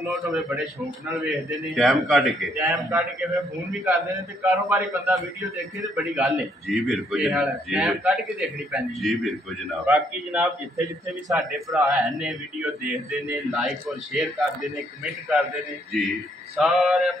ਹੋਵੇ ਬੜੇ ਸ਼ੌਕ ਨਾਲ ਵੇਖਦੇ ਨੇ, ਟਾਈਮ ਕੱਢ ਕੇ ਫਿਰ ਫੋਨ ਵੀ ਕਰਦੇ ਨੇ। ਤੇ ਕਾਰੋਬਾਰੀ ਬੰਦਾ ਵੀਡੀਓ ਦੇਖੇ ਤੇ ਬੜੀ ਗੱਲ ਹੈ ਜੀ ਬਿਲਕੁਲ ਟਾਈਮ ਕੱਢ ਕੇ ਦੇਖਣੀ ਪੈਂਦੀ ਜੀ ਬਿਲਕੁਲ ਜਨਾਬ। ਬਾਕੀ ਜਨਾਬ ਜਿੱਥੇ ਜਿੱਥੇ ਵੀ ਸਾਡੇ ਭਰਾ ਹੈ ਨੇ ਵੀਡੀਓ ਦੇਖਦੇ ਨੇ, ਲਾਈਕ ਔਰ ਸ਼ੇਅਰ ਕਰਦੇ ਨੇ, ਕਮੈਂਟ ਕਰਦੇ ਨੇ ਜੀ, ਸਾਰੇ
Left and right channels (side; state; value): both; normal; correlation 0.70